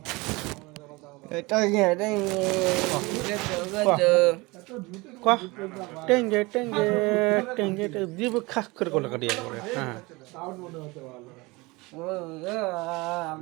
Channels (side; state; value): left; quieter; 23.8 dB